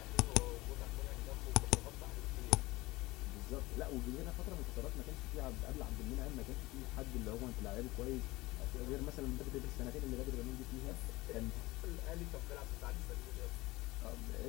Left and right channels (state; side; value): quieter; right; 20.3 dB